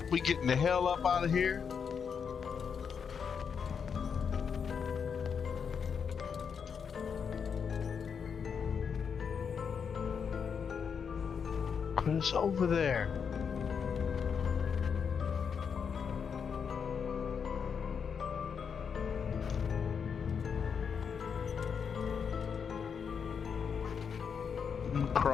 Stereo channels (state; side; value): quieter; right; 6.6 dB